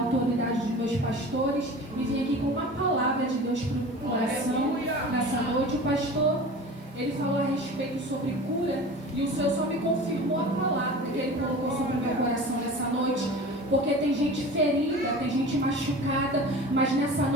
dos meus pastores, e vim aqui com uma palavra de Deus para o coração nessa noite. O pastor, ele falou a respeito sobre cura, e o Senhor só me confirmou a palavra que Ele colocou sobre o meu coração nessa noite, porque tem gente ferida, tem gente machucada, mas nessa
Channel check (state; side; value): normal; both; correlation 0.37